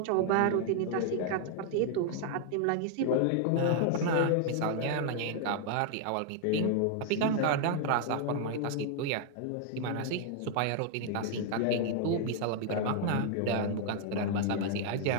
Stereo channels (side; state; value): both; different; correlation 0.00